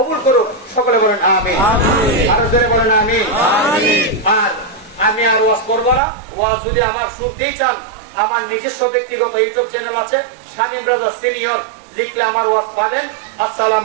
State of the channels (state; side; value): drops out; left; at 6.0 s